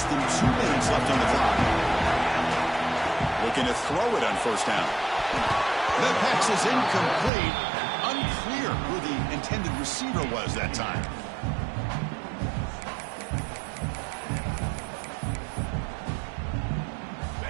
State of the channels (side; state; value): left; drops out; at 7.3 s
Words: than 2 minutes left on the clock. Looking to throw it on first down. The pass is incomplete. Unclear who the intended receiver was that time.